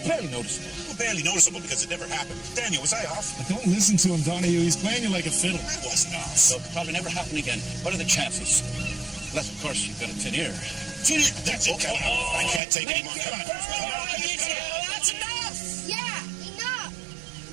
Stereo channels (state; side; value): drops out; left; at 12.6 s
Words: barely noticeable. Well, barely noticeable because it never happened. Daniel, was I off? Don't listen to him, Donahue. He's playing you like a fiddle. I wasn't off. So it'll probably never happen again. What are the chances? Unless, of course, you've got a tin ear. Tin ear? That's it. Come on. I can't take any more. Come on. That's enough. Yeah, enough.